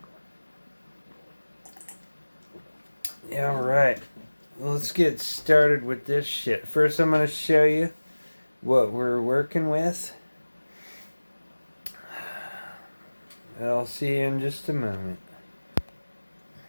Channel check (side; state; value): both; inverted; correlation -1.00